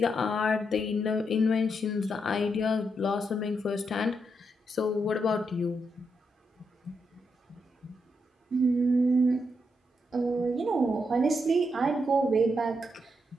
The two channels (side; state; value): both; normal; correlation 0.81